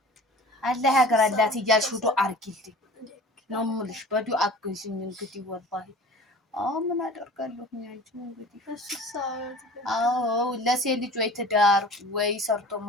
አላህ ያግራላት እያልሽ ዱአ አድርጊልኝ ነው የምልሽ። በዱአ አግዥኝ እንግዲህ ወላሂ ምን አደርጋለሁ አንቺ እንግዲህ አዎ ለሴት ልጅ ወይ ትዳር ወይ ሰርቶ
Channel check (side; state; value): both; normal; correlation 0.42